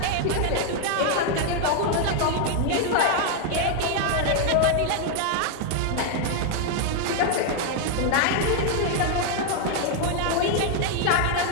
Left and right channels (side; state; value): both; different; correlation 0.00